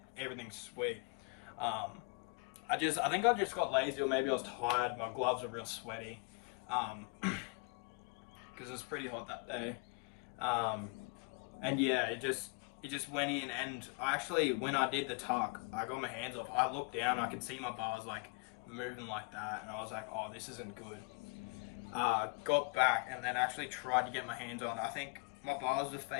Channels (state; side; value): quieter; right; 31.8 dB